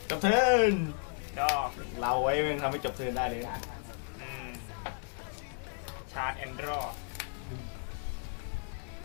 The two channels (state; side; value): silent; right; 55 dB below the other